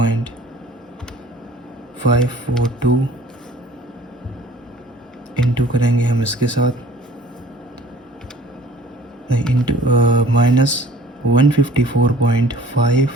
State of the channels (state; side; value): normal; both; correlation 0.50